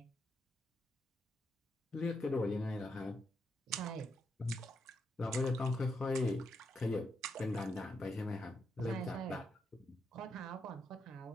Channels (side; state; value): both; normal; correlation 0.81